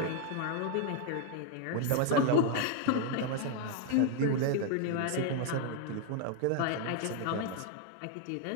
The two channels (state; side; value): different; both; correlation 0.01